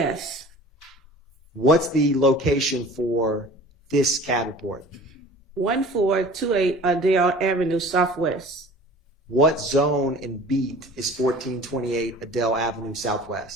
What's the location for this CAD report? 1428 Adele Avenue Southwest. What zone and beat is 1428 Adele Avenue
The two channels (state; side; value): normal; both; correlation 0.43